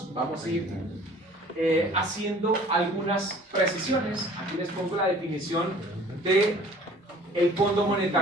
Vamos a ir haciendo algunas precisiones. Aquí les pongo la definición de el Fondo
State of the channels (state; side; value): normal; both; correlation 0.50